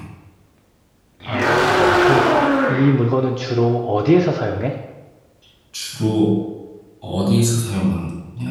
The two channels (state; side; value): identical; both; correlation 1.00